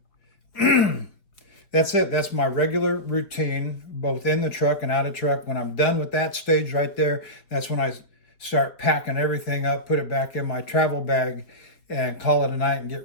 That's it. That's my regular routine, both in the truck and out of truck. When I'm done with that stage right there, that's when I start packing everything up, put it back in my travel bag, and call it a night and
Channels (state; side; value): late; right; 4.5 ms